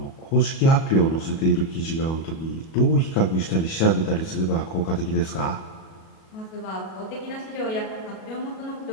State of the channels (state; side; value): late; right; 37 ms